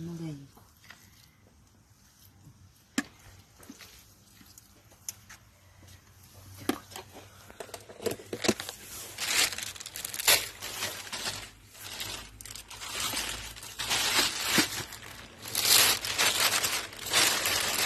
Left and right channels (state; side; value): identical; both; correlation 1.00